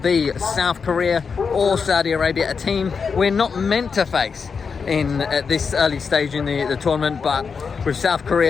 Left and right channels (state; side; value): quieter; right; 5.6 dB